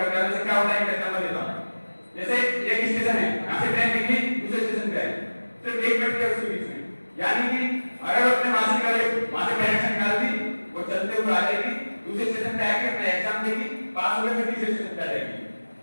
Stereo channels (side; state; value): both; inverted; correlation -1.00